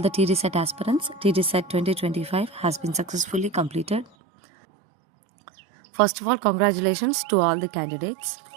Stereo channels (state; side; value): drops out; left; at 4.1 s